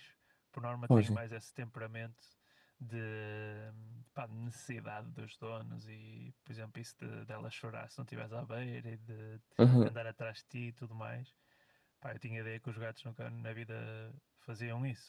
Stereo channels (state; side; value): identical; both; correlation 1.00